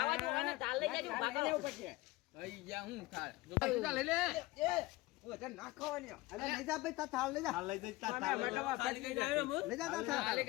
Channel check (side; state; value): right; quieter; 19.7 dB